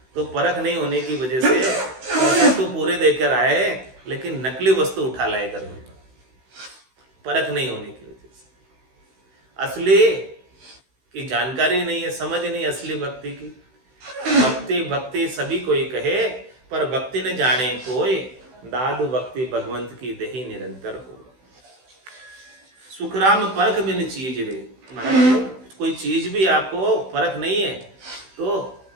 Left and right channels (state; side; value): late; left; 16 ms